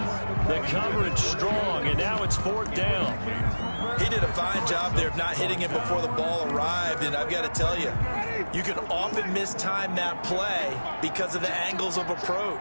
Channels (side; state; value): both; inverted; correlation -1.00